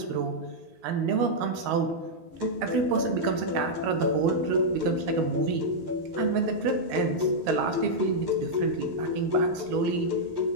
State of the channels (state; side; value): late; left; 13 ms